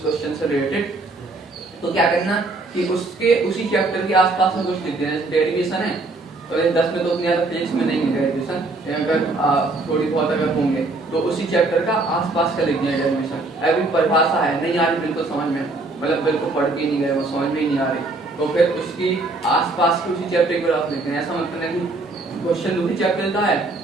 क्वेश्चन से रिलेटेड, तो क्या करना कि उसके उसी चैप्टर के आसपास में कुछ लिख देना, जैसे डेरिवेशन है तो 10 में तो उतनी ज्यादा फिजिक्स में नहीं है डेरिवेशन, अगर थोड़ी बहुत अगर होंगे तो उसी चैप्टर का आसपास का लिख दिया डेरिवेशन, अभी परिभाषा है नहीं आ रही बिल्कुल समझ में, मतलब बिल्कुल पढ़ के नहीं गए वो समझ में ही नहीं आ रही, तो फिर उसकी आसपास के उसी चैप्टर के ग्राफ लिखते हैं, ऐसा मतलब है कि क्वेश्चन दूसरी चैप्टर का है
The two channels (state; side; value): quieter; left; 3.2 dB